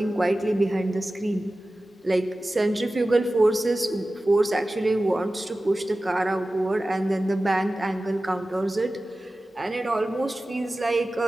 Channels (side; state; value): both; normal; correlation 0.96